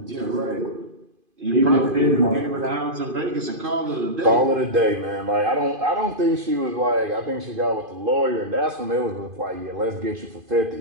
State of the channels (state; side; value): late; left; 2.5 ms